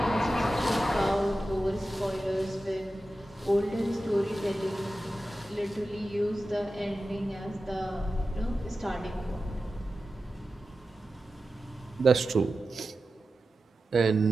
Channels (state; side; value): normal; both; correlation 0.93